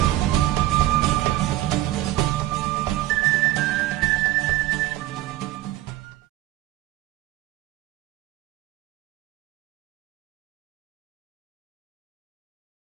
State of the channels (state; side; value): quieter; left; 15.0 dB